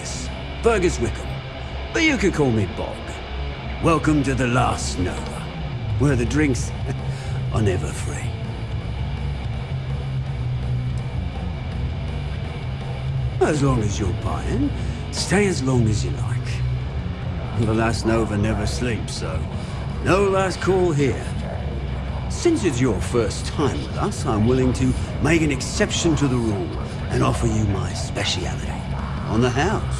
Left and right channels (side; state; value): both; identical; correlation 1.00